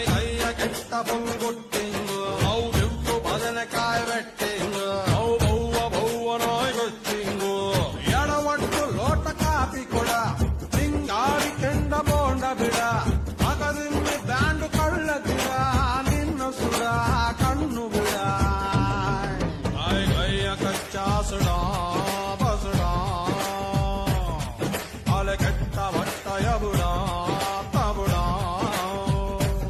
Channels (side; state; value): both; identical; correlation 1.00